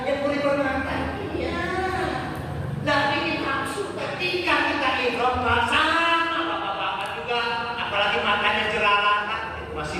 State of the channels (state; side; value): identical; both; correlation 1.00